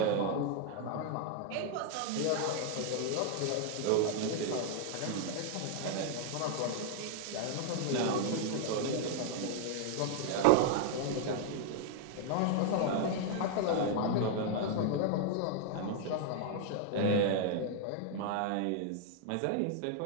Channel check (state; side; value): different; both; correlation 0.00